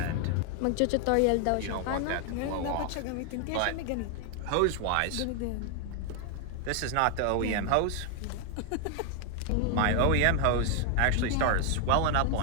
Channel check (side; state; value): both; different; correlation 0.01